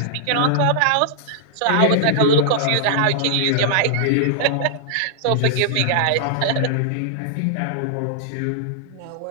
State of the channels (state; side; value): different; both; correlation -0.01